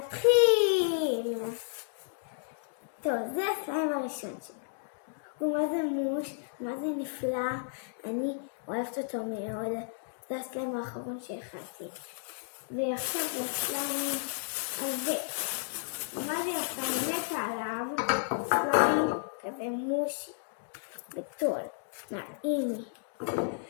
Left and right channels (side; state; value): right; silent; digital silence